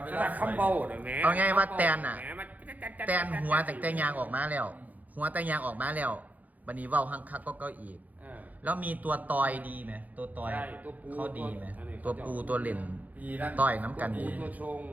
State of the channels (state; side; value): late; left; 0.079 ms